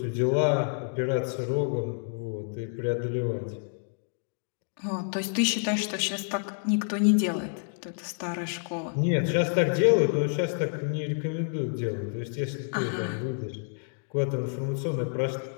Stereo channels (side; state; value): right; silent; digital silence